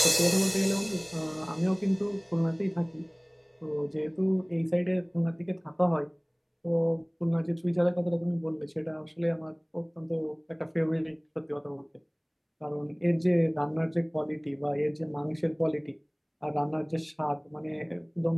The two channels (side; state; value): both; identical; correlation 1.00